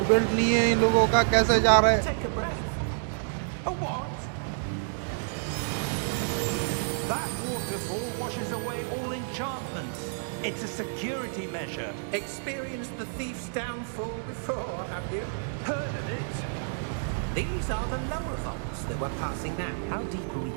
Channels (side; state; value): left; silent; digital silence